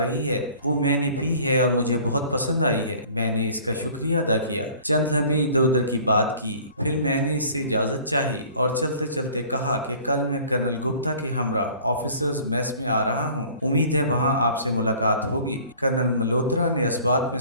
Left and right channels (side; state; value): both; inverted; correlation -0.49